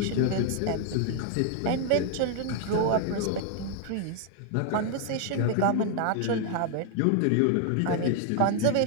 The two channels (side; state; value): both; different; correlation 0.00